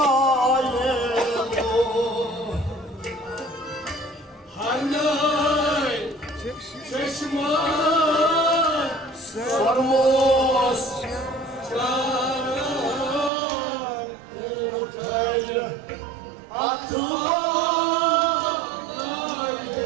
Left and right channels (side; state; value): left; drops out; at 13.3 s